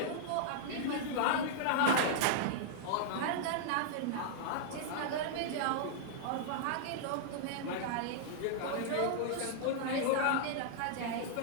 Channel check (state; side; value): different; both; correlation -0.02